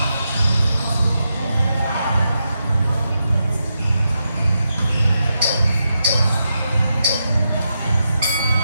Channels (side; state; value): both; inverted; correlation -0.85